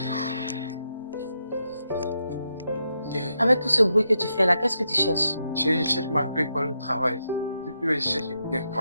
Avec tout ce bruit que tu fais là, qu'est-ce que tu cherches? Je cherche ma clé pour le travail. Depuis que je cherche, je viens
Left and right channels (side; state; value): both; inverted; correlation -0.83